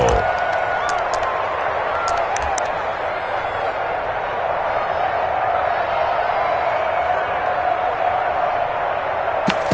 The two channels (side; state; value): both; identical; correlation 1.00